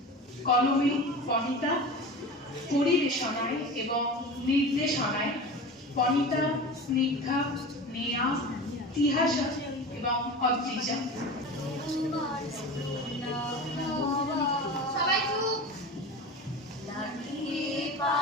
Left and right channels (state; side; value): normal; both; correlation 0.32